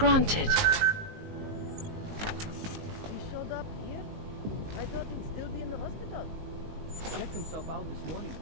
He showed up here? I thought he'd still be in the hospital. He checked himself out this morning.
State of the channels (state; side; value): late; left; 19 ms